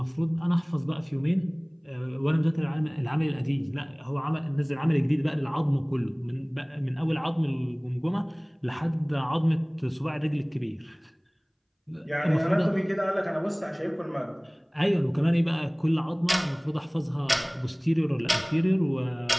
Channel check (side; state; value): both; identical; correlation 1.00